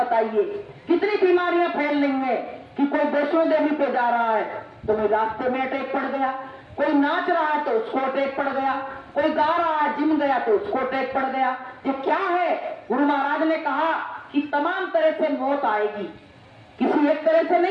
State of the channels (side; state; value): both; identical; correlation 1.00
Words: कितनी बीमारियां फैल रही हैं कि कोई वैष्णो देवी पे जा रहा है तो कोई रास्ते में अटैक पड़ गया, कोई नाच रहा है तो उसको अटैक पड़ गया, कोई गा रहा है जिम गया तो उसको अटैक पड़ गया। ये क्या है? गुरु महाराज ने कहा कि तमाम तरह से मौत आएगी, किसी एक तरह से